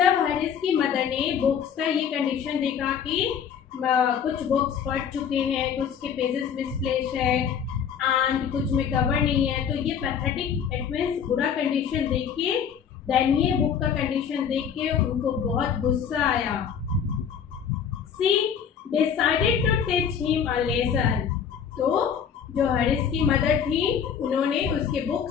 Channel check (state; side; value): quieter; right; 7.7 dB